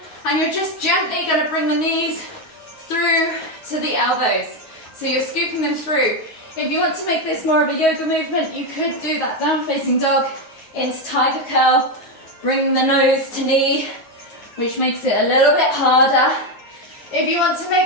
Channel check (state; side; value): late; right; 9.4 ms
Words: and you're just gently going to bring the knees through to the elbows. So you're scooping them through. If you want to make this more of a yoga movement, you could do that down facing dog into tiger curl, bring the nose to knee, which makes it a little bit harder. If you want to